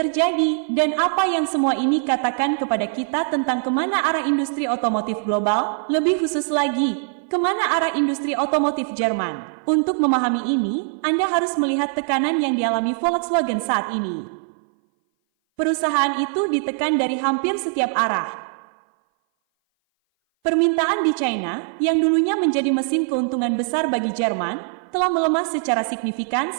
dan apa yang semua ini katakan kepada kita tentang kemana arah industri otomotif global, lebih khusus lagi, kemana arah industri otomotif Jerman? Untuk memahami ini, Anda harus melihat tekanan yang dialami Volkswagen saat ini. Perusahaan itu ditekan dari hampir setiap arah. Permintaan di China, yang dulunya menjadi mesin keuntungan besar bagi Jerman, telah melemah secara signifikan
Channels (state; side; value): silent; left; 59 dB below the other